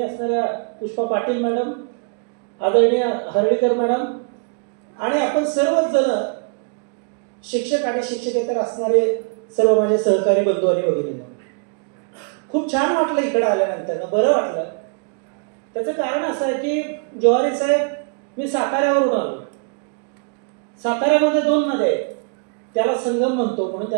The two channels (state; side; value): quieter; left; 39.8 dB